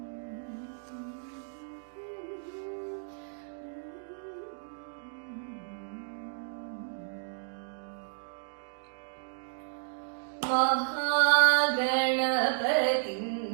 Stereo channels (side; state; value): left; silent; digital silence